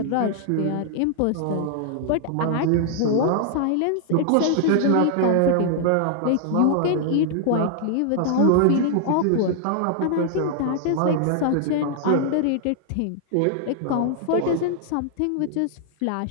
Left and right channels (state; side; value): different; both; correlation 0.00